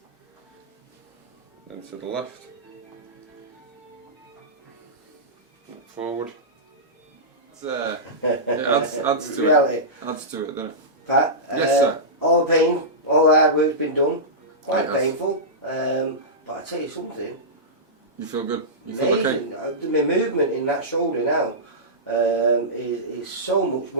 then to the left, forward. It adds to it. Adds to it, doesn't it? Pat, yes, sir. All the pain, all the hard work's been done. Quite It has. painful, but I tell you something. You feel good? You feel Amazing. okay? My movement in that shoulder now is so much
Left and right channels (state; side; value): normal; both; correlation -0.15